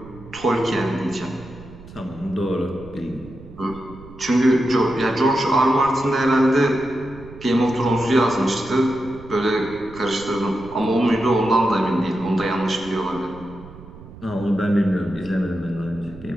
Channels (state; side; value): noise; right; rumble, 18 dB below the sound